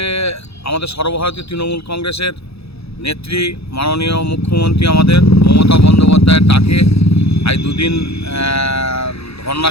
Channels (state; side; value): late; right; 0.78 ms